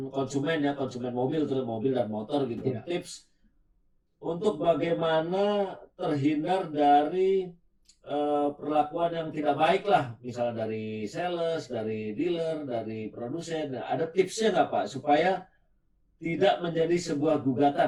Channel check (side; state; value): both; identical; correlation 1.00